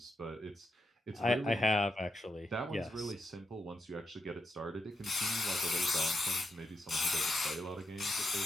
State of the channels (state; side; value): normal; both; correlation 0.84